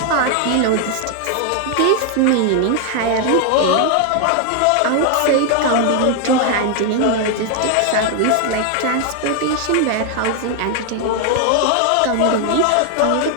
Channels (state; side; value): different; both; correlation 0.01